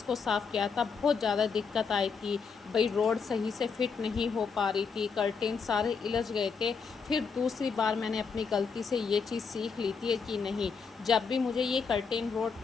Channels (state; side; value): quieter; right; 5.5 dB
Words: को साफ़ किया था, बहुत ज़्यादा दिक्कत आई थी। भाई रोड सही से फिट नहीं हो पा रही थी, कर्टेन सारे इलझ गए थे। फिर दूसरी बार मैंने अपनी गलती से ये चीज़ सीख ली थी कि नहीं, जब भी मुझे ये कर्टेन